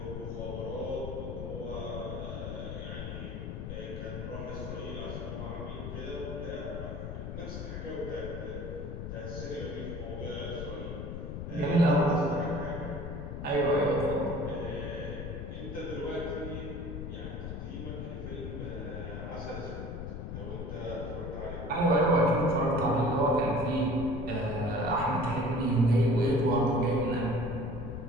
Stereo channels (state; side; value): noise; left; rumble, 6 dB below the sound